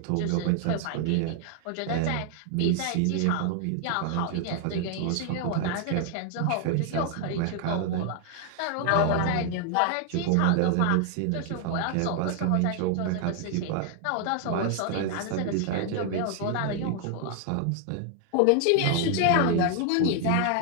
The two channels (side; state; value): both; different; correlation 0.00